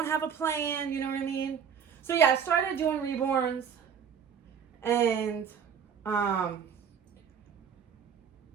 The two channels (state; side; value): quieter; left; 7.4 dB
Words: have a plan. You know what I mean? So yeah, I started doing reborns, and I